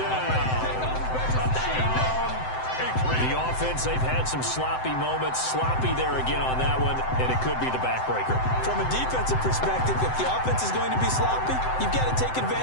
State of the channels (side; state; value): right; late; 7.8 ms